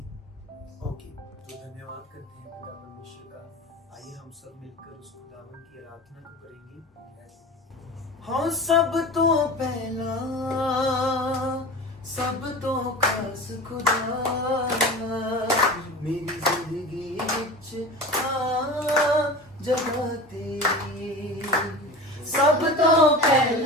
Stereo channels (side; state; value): both; normal; correlation 0.33